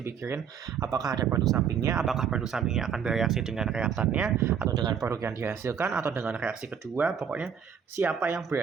apakah ada produk sampingnya, apakah produk sampingnya akan bereaksi dengan reaktannya, atau dengan produk yang dihasilkan, atau dengan reaksi kedua. Pokoknya siapa yang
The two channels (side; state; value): left; quieter; 7.5 dB